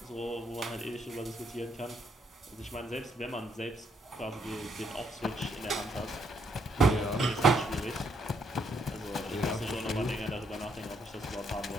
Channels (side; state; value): both; normal; correlation 0.73